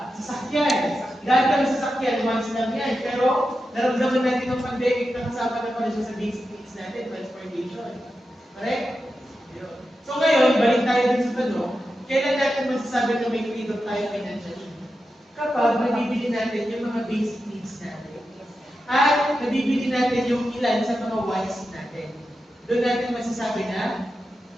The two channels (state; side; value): normal; both; correlation 0.90